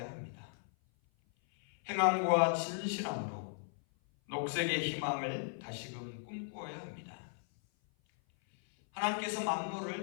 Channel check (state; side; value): silent; right; 53 dB below the other